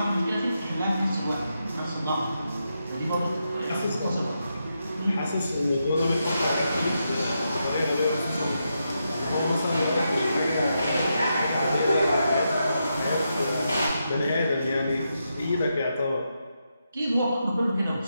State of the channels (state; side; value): inverted; both; correlation -0.84